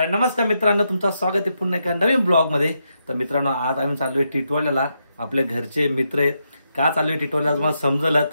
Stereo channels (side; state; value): both; inverted; correlation -0.82